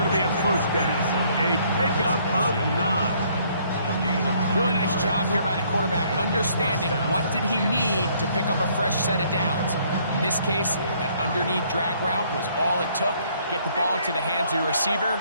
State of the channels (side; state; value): both; inverted; correlation -0.64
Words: to be a first down. A pickup of 9. Really nice job here by the quarterback, understanding what did he need to pick up a fresh set of downs. In this case, that underneath drag route was all it took. Get the ball into the hands of your